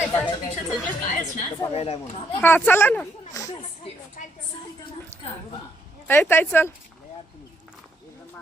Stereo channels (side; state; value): both; normal; correlation 0.74